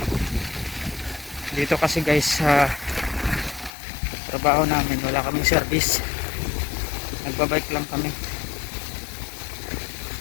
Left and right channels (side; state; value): right; drops out; at 3.7 s